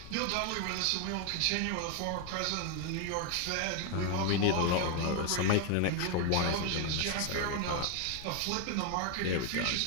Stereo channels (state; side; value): different; both; correlation 0.01